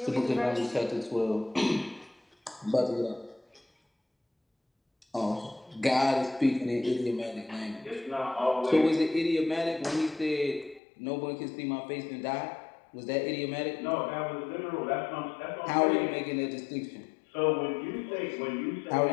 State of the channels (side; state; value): right; drops out; at 10.8 s